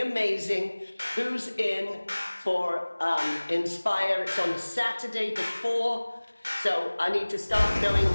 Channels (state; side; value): inverted; both; correlation -1.00